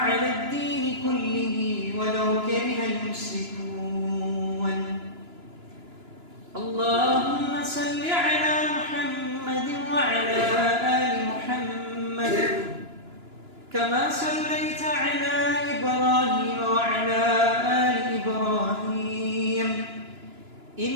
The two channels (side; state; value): left; late; 2.9 ms